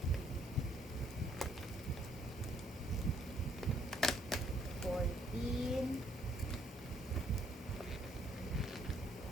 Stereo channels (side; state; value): both; normal; correlation 0.68